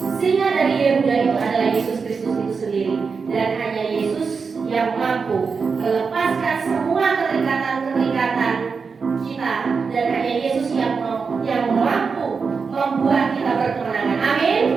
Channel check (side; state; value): left; quieter; 5.2 dB